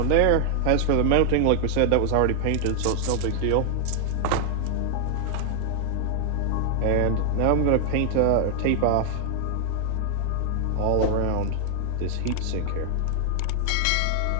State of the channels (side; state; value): both; different; correlation 0.00